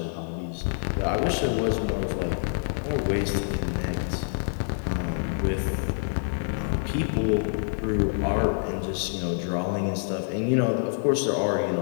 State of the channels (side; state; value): right; silent; 60 dB below the other